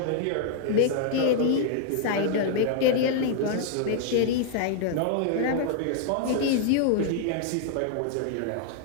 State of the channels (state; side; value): different; both; correlation -0.01